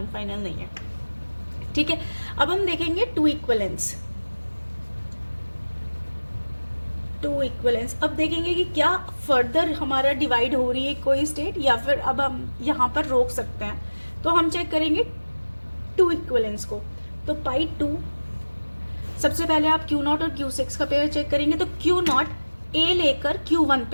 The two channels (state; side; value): inverted; both; correlation -1.00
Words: फाइनल नहीं है। ठीक है, अब हम देखेंगे 2 इक्वलेंस। 2 इक्वलेंस अब देखेंगे कि क्या फर्दर हमारा डिवाइड हो रही है कोई स्टेट, या फिर अब हम यहाँ पर रोक सकते हैं। तो हम चेक करेंगे 2 इक्वलेंस को। तो पाई 2, सबसे पहले आप Q0 और Q6 का पेयर चेक करेंगे। तो Q0 ए लेकर Q1